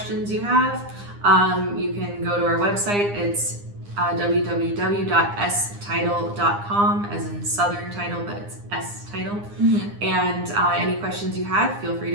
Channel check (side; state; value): left; late; 9.8 ms